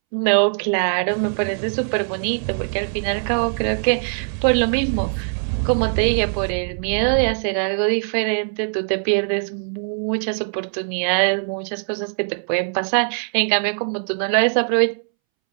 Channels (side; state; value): left; silent; 65 dB below the other